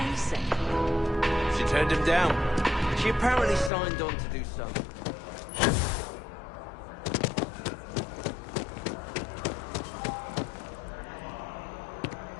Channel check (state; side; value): drops out; right; at 3.7 s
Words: She turned him down. She apparently signed on to do something.